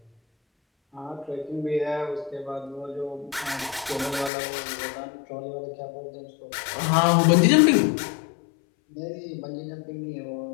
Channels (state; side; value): drops out; right; at 4.3 s